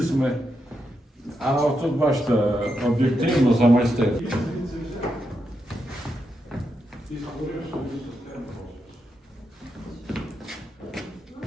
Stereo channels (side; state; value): both; normal; correlation 0.84